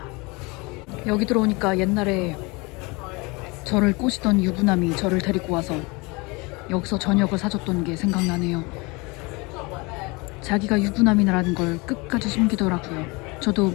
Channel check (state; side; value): quieter; right; 26.5 dB